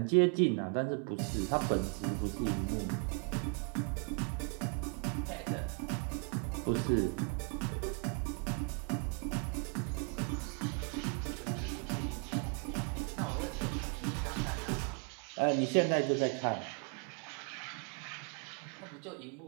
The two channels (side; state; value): left; quieter; 38.1 dB